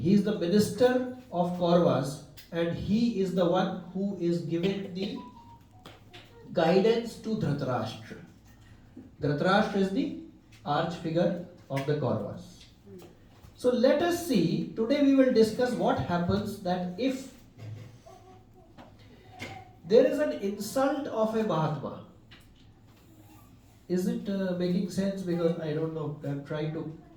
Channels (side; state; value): both; identical; correlation 1.00